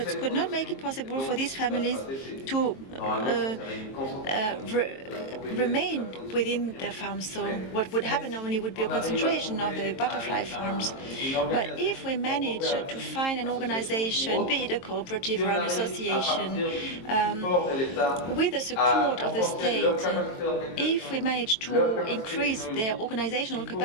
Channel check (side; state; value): right; late; 22 ms